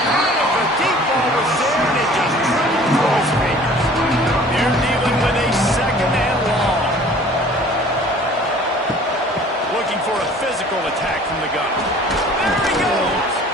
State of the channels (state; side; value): normal; both; correlation 0.50